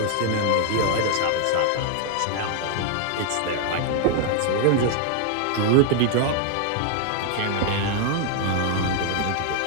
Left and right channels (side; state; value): both; different; correlation 0.00